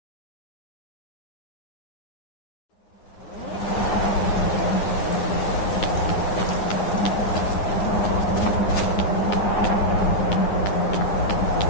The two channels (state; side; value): late; right; 9.6 ms